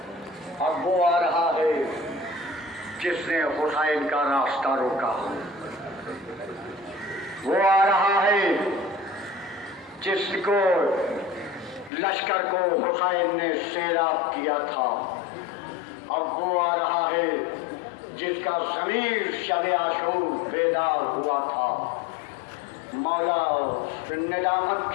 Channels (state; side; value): drops out; right; at 11.9 s